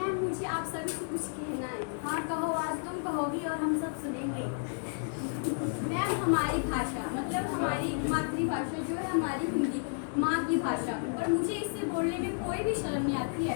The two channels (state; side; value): silent; right; digital silence